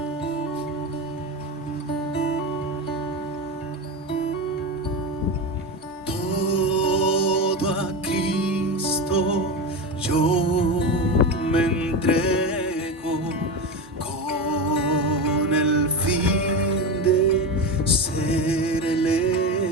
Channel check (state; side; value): normal; both; correlation 0.20